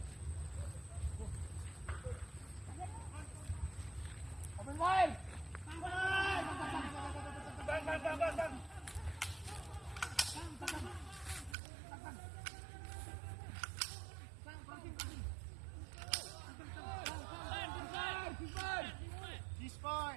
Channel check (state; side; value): drops out; left; at 11.6 s